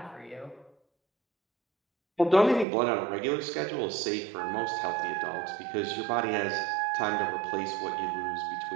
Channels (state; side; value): drops out; left; at 2.7 s